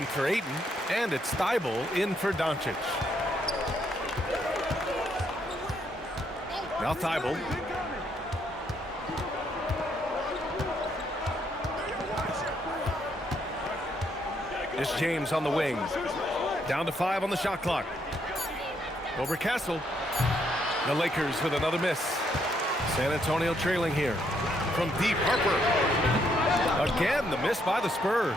for Ayton, and it's Thibault in for Doncic. Now Thibault. It's James on the wing. Down to 5 on the shot clock. Over Castle. The Lakers with another miss. San Antonio trailing here. From deep, Harper. Again, the miss by the Spurs.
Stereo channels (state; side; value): normal; both; correlation 0.73